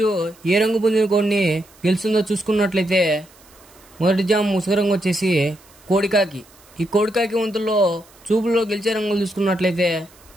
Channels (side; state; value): right; noise; hiss, 27 dB below the sound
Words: పుంజుని కొన్ని గెలుస్తుందో చూసుకున్నట్లయితే మొదటి జామ్ ముసుగు రంగు వచ్చేసి కోడికాకి. ఈ కోడికాకి వంతుల్లో చూపుల్లో గెలిచే రంగులు చూసుకున్నట్లయితే